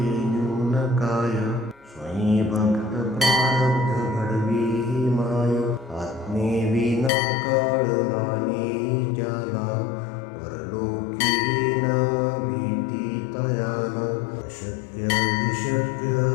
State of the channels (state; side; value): drops out; right; at 7.1 s